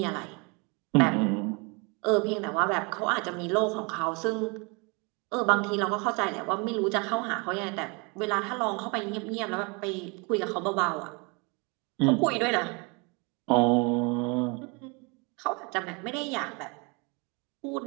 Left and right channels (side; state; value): left; quieter; 30.5 dB